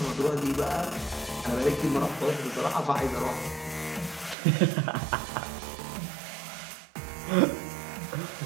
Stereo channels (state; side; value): drops out; left; at 4.4 s